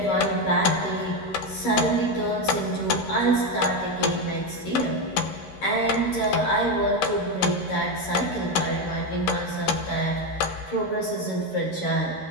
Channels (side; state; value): right; late; 13 ms